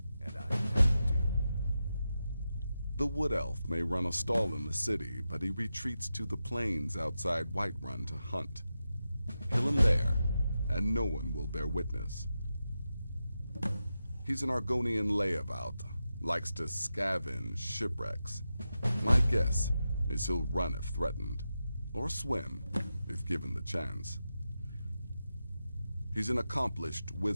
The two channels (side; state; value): both; inverted; correlation -0.90